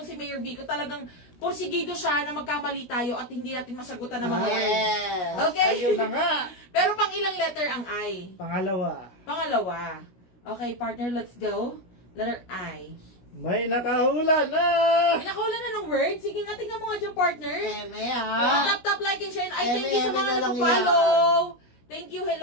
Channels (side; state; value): right; late; 17 ms